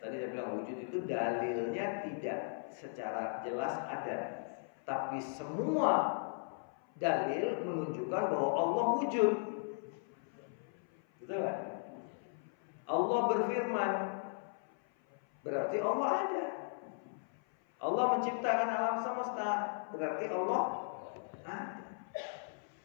saya bilang wujud itu dalilnya tidak secara jelas ada, tapi semua dalil menunjukkan bahwa Allah wujud. Betul kan? Allah berfirman, berarti Allah ada. Allah menciptakan alam semesta, berarti Allah ada.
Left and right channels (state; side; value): silent; right; 53 dB below the other